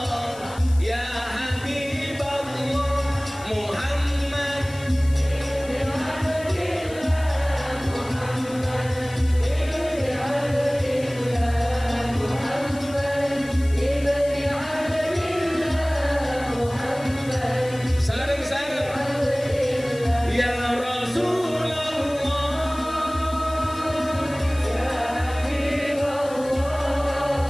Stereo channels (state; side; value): noise; left; hiss, 19 dB below the sound